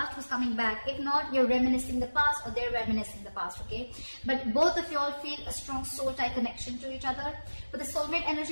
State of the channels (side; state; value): both; inverted; correlation -1.00